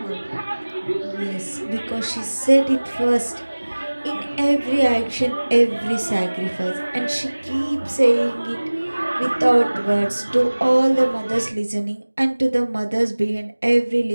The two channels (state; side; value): inverted; both; correlation -1.00